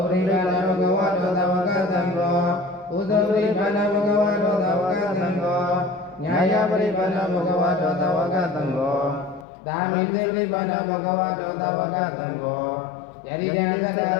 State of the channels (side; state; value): right; drops out; at 9.5 s